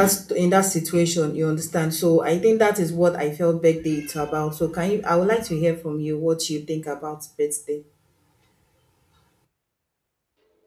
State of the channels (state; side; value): identical; both; correlation 1.00